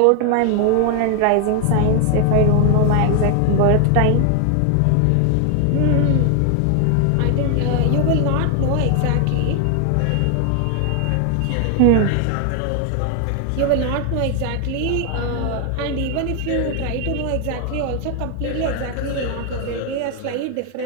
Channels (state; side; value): different; both; correlation 0.00